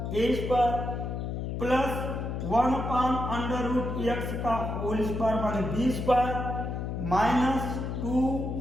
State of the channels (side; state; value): left; noise; hum, 3 dB below the sound